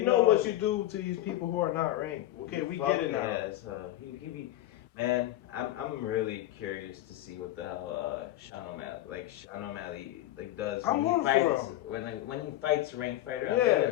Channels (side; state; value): right; quieter; 14.8 dB